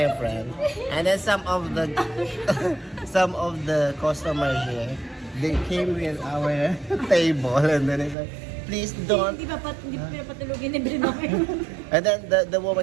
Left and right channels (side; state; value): left; drops out; at 8.2 s